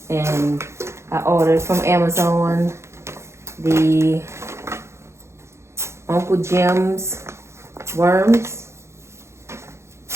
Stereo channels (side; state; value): left; late; 0.13 ms